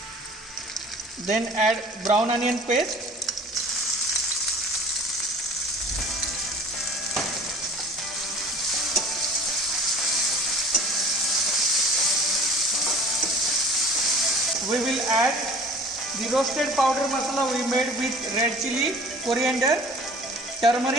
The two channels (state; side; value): normal; both; correlation 0.46